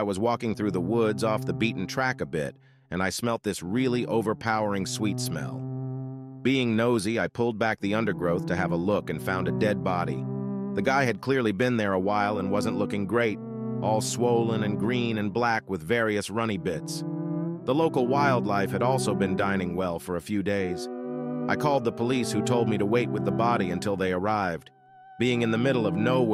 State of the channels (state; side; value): identical; both; correlation 1.00